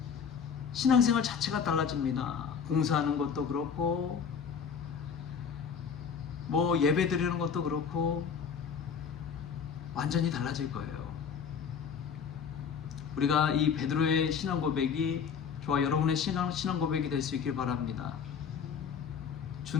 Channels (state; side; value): quieter; right; 6.7 dB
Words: 신앙생활 자체가 달라집니다. 봉사하는 것도 그렇고 예배 드리는 것도 그렇고 완전히 달라질 거예요. 우리가 이 베드로의 신앙 고백이 저와 여러분의 신앙 고백이 될 수 있길 바랍니다.